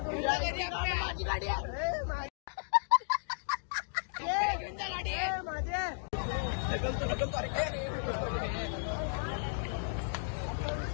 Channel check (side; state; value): right; silent; digital silence